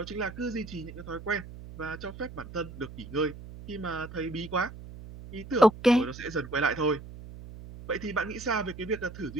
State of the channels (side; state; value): right; noise; hum, 14 dB below the sound